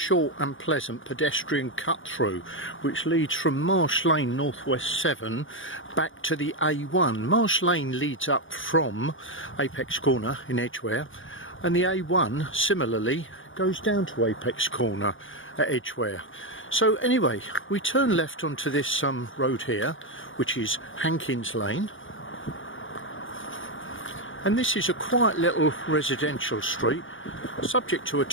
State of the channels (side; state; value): right; late; 0.57 ms